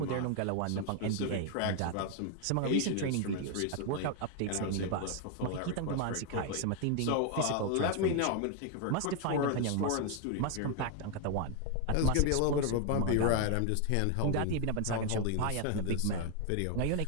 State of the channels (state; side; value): different; both; correlation 0.00